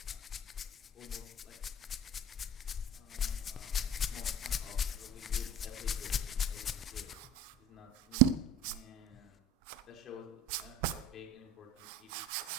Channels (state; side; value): normal; both; correlation 0.36